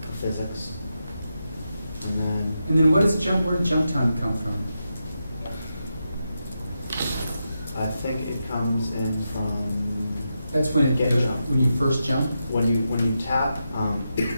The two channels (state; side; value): inverted; both; correlation -0.87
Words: physics. And then what is jump, where did jump time come from? I think it comes in from That's when it, Get jump. when you first jump? when you tap